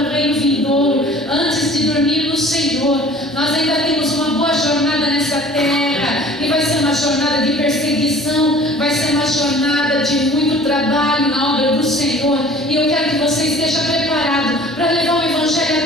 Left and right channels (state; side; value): normal; both; correlation 0.48